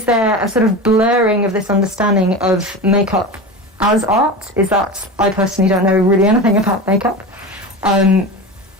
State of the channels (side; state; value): both; normal; correlation 0.27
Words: there a sort of blurring of this understanding of makeup as art? Is that, I personally don't know really anything about makeup.